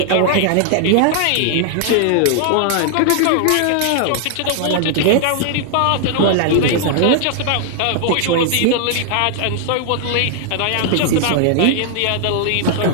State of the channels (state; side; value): different; both; correlation 0.00